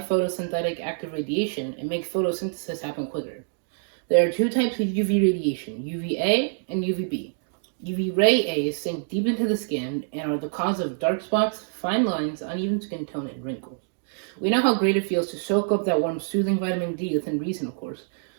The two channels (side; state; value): left; silent; digital silence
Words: photosynthetic active radiation, it makes photosynthesis happen quicker. There are 2 types of UV radiation, UVA and UVB. UV ray A's sink deep into the skin and are the cause of dark spots, fine lines, uneven skin tone, and wrinkles. We know how great it feels to soak up that warm, soothing vitamin D within reason, of course.